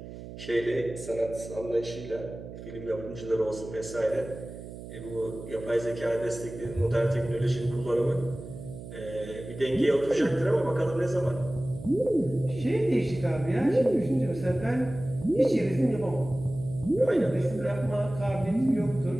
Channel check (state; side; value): noise; right; hum, 12 dB below the sound